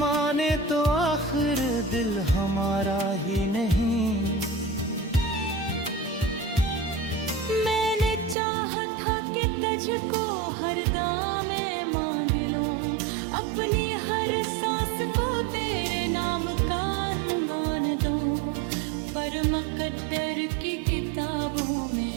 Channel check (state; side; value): drops out; left; at 8.3 s